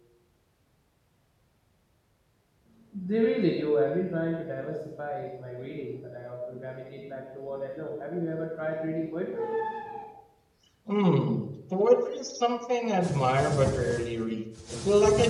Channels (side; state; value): both; identical; correlation 1.00